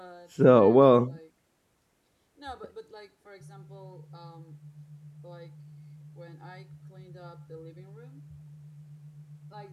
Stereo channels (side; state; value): both; identical; correlation 1.00